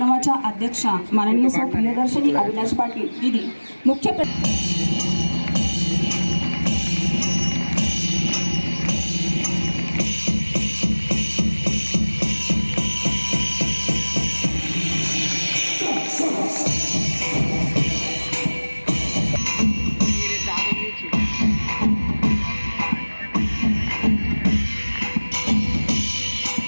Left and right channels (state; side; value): inverted; both; correlation -1.00